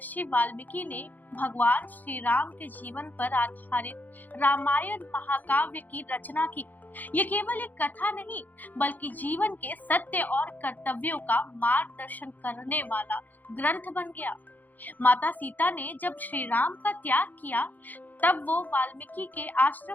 वाल्मीकि ने भगवान श्री राम के जीवन पर आधारित रामायण महाकाव्य की रचना की। ये केवल एक कथा नहीं, बल्कि जीवन के सत्य और कर्तव्यों का मार्गदर्शन करने वाला ग्रंथ बन गया। माता सीता ने जब श्री राम का त्याग किया, तब वो वाल्मीकि के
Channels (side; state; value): right; late; 0.084 ms